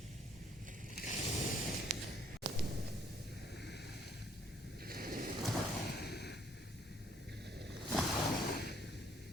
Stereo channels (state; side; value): normal; both; correlation 0.64